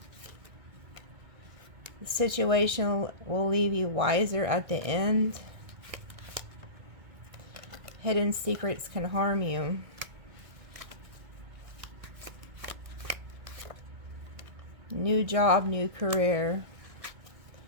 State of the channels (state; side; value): late; left; 1.6 ms